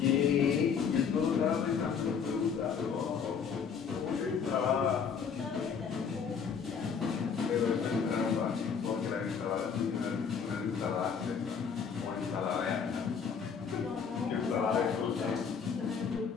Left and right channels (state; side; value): quieter; right; 6.5 dB